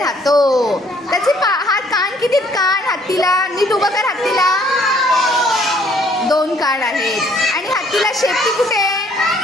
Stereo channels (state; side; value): normal; both; correlation 0.62